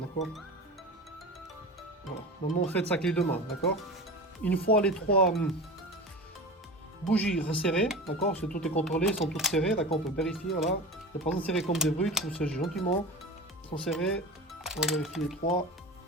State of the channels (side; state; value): both; normal; correlation 0.30